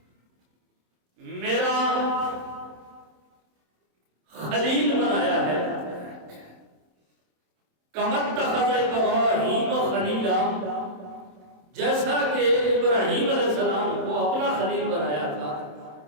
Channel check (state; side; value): late; left; 27 ms